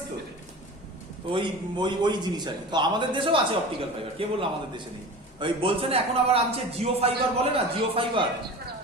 তো? ওই ওই ওই জিনিস আর কি। তো আমাদের দেশেও আছে অপটিক্যাল ফাইবার, কে বললো আমাদের দেশে নেই? ওই বলছে না এখন আবার আনছে জিও ফাইবার, বলে না জিও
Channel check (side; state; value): both; normal; correlation 0.34